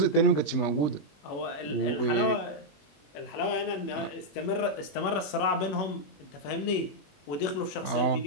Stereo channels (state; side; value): late; right; 21 ms